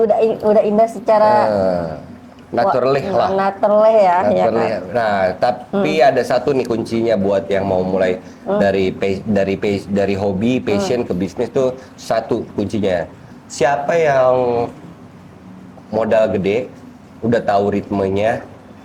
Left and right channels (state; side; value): identical; both; correlation 1.00